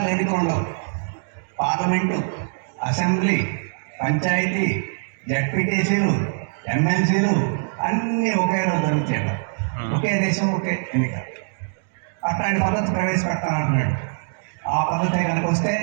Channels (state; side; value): silent; left; digital silence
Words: ఎన్నికలు ఉండవు, పార్లమెంటు, అసెంబ్లీ, పంచాయతీ, జడ్పీటీసీలు, ఎమ్మెల్సీలు అన్నీ ఒకే రోజు జరుగుతాయి. ఒకే దేశం ఒకే ఎన్నిక. అట్లాంటి పద్ధతి ప్రవేశపెడతానంటున్నాడు. ఆ పద్ధతి కనుక వస్తే